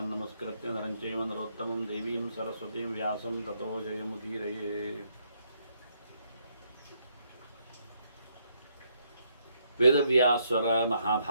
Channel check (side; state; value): both; inverted; correlation -0.74